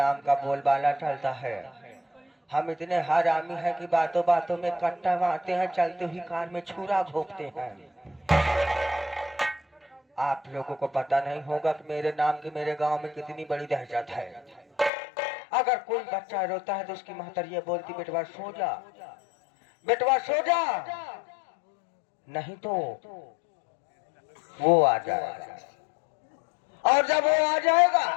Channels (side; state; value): right; drops out; at 14.9 s